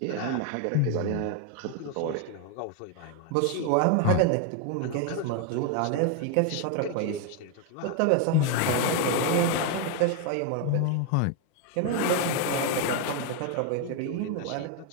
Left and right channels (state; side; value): different; both; correlation 0.01